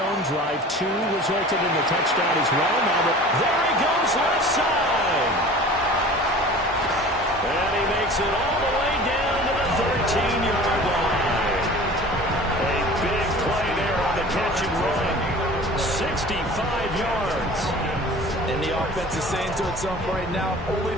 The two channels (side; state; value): both; normal; correlation 0.42